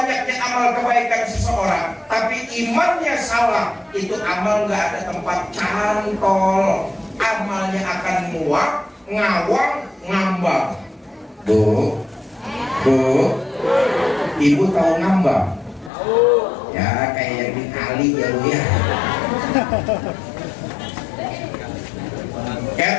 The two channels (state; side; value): drops out; right; at 15.9 s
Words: amal kebaikan seseorang, tapi imannya salah, itu amal nggak ada tempat cantol. Amalnya akan muak, ngawang, ngambang. Bu, ibu tahu ngambang? Ya kayak yang di kali ya bu ya.